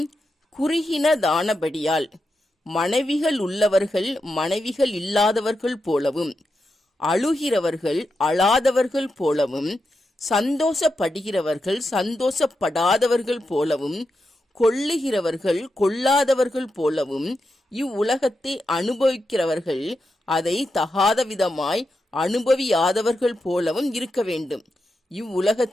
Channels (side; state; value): both; normal; correlation 0.87